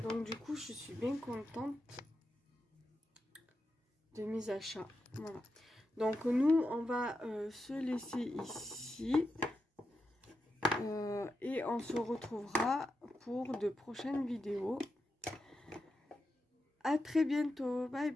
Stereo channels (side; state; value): both; normal; correlation 0.88